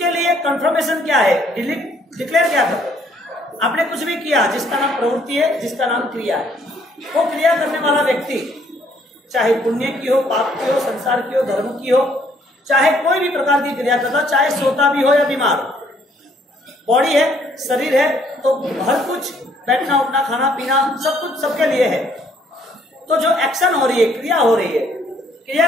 लिए कंफर्मेशन क्या है, डिक्लेयर क्या करो। आपने कुछ भी किया जिसका नाम प्रवृत्ति है, जिसका नाम क्रिया है, वो क्रिया करने वाला व्यक्ति चाहे पुण्य की हो, पाप की हो, संसार की हो, धर्म की हो, चाहे कोई भी प्रकार की क्रिया करता हो, चाहे सोता भी हो या बीमार हो, बॉडी है, शरीर है, तो हर कुछ, बैठना उठना खाना पीना सब कुछ सबके लिए है। तो जो एक्शन हो रही है, क्रिया हो रही है,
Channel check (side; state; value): both; normal; correlation 0.65